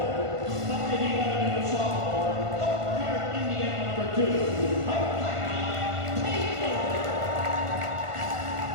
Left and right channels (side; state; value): left; late; 1.5 ms